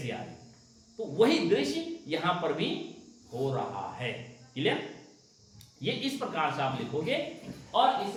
आ रही। तो वही दृश्य यहां पर भी हो रहा है। क्लियर? ये इस प्रकार से आप लिखोगे, और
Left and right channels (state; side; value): identical; both; correlation 1.00